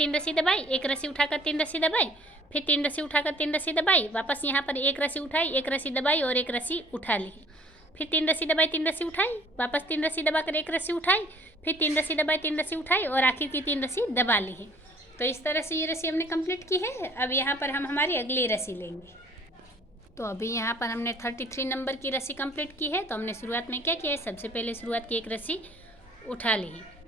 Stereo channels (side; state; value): both; normal; correlation 0.55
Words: रस्सी दबाई, 1 रस्सी उठाकर 3 रस्सी दबाई, फिर 3 रस्सी उठाकर 3 रस्सी दबाई, वापस यहाँ पर 1 रस्सी उठाई, 1 रस्सी दबाई और 1 रस्सी उठा ली, फिर 3 रस्सी दबाई, 3 रस्सी उठाई, वापस 3 रस्सी दबाकर 1 रस्सी उठाई, फिर 3 रस्सी दबाई, 3 रस्सी उठाई और आखिर की 3 रस्सी दबा ली है। तो इस तरह से ये रस्सी हमने कंप्लीट की है। अब यहाँ पर हम हमारी अगली रस्सी लेंगे। तो अभी यहाँ पर हमने 33 नंबर की रस्सी कंप्लीट की है। तो हमने शुरुआत में क्या किया है, सबसे पहले शुरुआत की 1 रस्सी उठा ली,